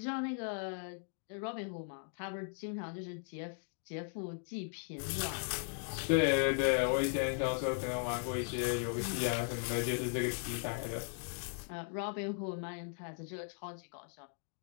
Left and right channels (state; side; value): silent; right; 52 dB below the other